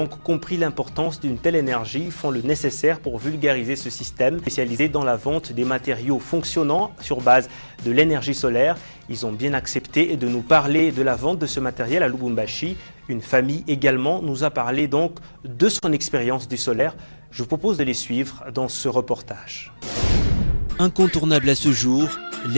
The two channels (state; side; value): inverted; both; correlation -1.00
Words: compris l'importance d'une telle énergie font le nécessaire pour vulgariser ce système spécialisé dans la vente des matériaux fonctionnant sur base de l'énergie solaire. Ils ont bien accepté de nous parler de la vente de ce matériel à Lubumbashi. Une famille également nous a parlé donc de son expérience du solaire. Je vous propose de les suivre dans ce reportage. Incontournable à ce jour,